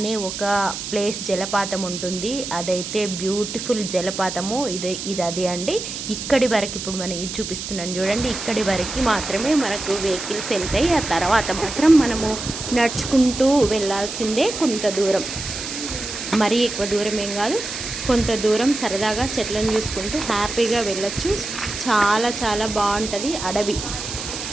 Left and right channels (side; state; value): right; noise; hiss, 7 dB below the sound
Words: ఒక ప్లేస్ జలపాతం ఉంటుంది. అదైతే బ్యూటిఫుల్ జలపాతము. ఇది అది అండి. ఇక్కడి వరకు ఇప్పుడు మనం ఇది చూపిస్తున్నాను చూడండి. ఇక్కడి వరకు మాత్రమే మనకు వెహికల్స్ వెళ్తాయి. ఆ తర్వాత మాత్రం మనము నడుచుకుంటూ వెళ్ళాల్సిందే. కొంత దూరం, మరీ ఎక్కువ దూరం ఏం కాదు, కొంత దూరం సరదాగా చెట్లను చూసుకుంటూ హ్యాపీగా వెళ్ళొచ్చు. చాలా చాలా బాగుంటుంది. అడవి,